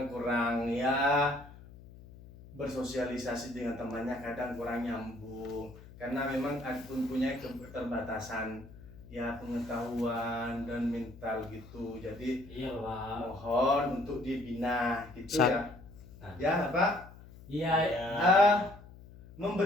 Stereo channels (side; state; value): left; noise; hum, 19 dB below the sound